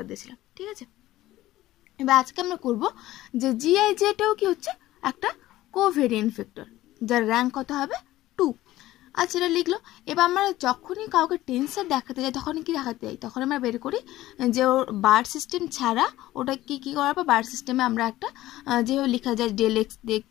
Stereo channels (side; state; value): right; quieter; 15.8 dB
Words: দিয়েছিলাম, ঠিক আছে? এবার আজকে আমরা করব যে GIJটাও কি হচ্ছে একটা কোভেরিয়েন্ট ভেক্টর, যার র্যাঙ্ক কত হবে 2। আচ্ছা, এটা লিখলো। এবার আমরা যখনই কাউকে টেন্সর দেখাতে যাই, তখনই কি দেখাতে যাই, তখন আমরা বের করি যে ওর বার সিস্টেম ছাড়া ওটা কি করাবো, বার সিস্টেমে আমরা একটা যেভাবে লেখা যায় ডেল এক্স দেখ